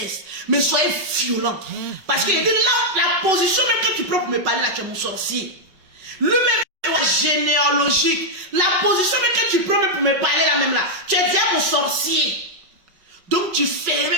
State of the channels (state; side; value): late; left; 5.3 ms